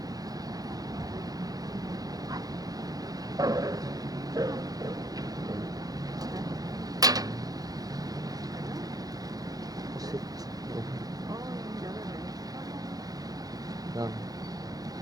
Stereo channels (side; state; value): left; late; 0.18 ms